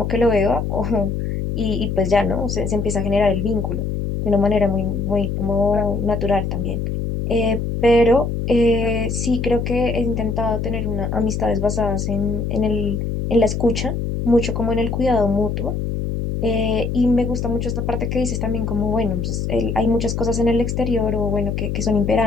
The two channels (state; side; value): noise; left; hum, 2 dB below the sound